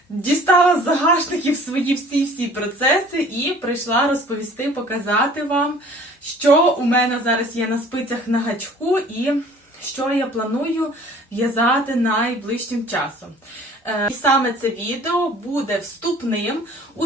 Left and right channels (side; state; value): both; normal; correlation 0.50